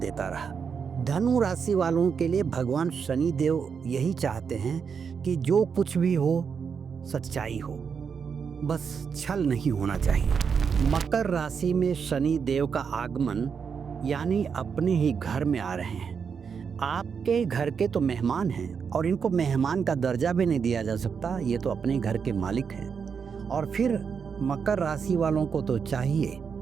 रहा। धनु राशि वालों के लिए भगवान शनि देव यही चाहते हैं कि जो कुछ भी हो सच्चाई हो, बस छल नहीं होना चाहिए। मकर राशि में शनि देव का आगमन यानी अपने ही घर में आ रहे हैं। आपके घर के तो मेहमान हैं और इनको मेहमान का दर्जा भी नहीं दिया जा सकता, ये तो अपने घर के मालिक हैं। और फिर मकर राशि वालों को तो चाहिए,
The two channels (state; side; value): quieter; left; 6.4 dB